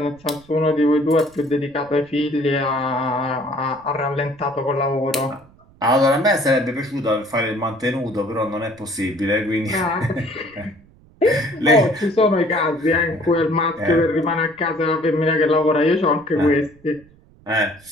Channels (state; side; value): noise; right; rumble, 27 dB below the sound